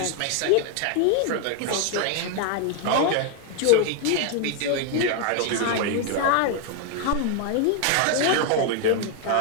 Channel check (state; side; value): different; both; correlation 0.00